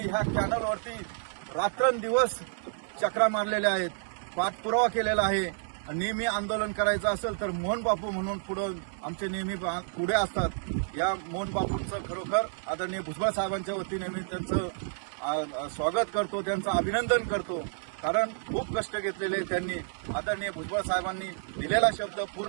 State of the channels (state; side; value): silent; left; 58 dB below the other